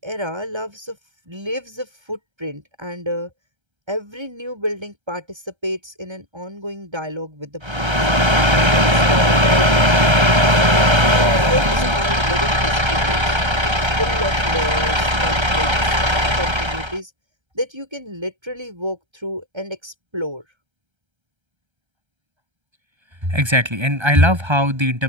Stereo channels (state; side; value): late; left; 1.3 ms